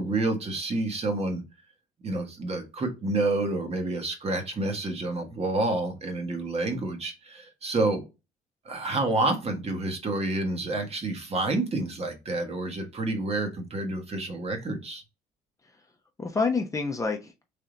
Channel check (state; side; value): normal; both; correlation 0.51